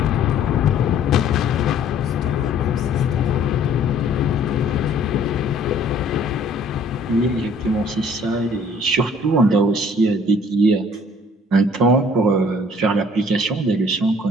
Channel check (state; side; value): normal; both; correlation 0.56